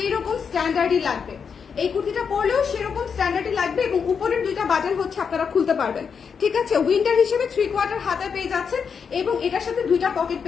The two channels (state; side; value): quieter; right; 6.3 dB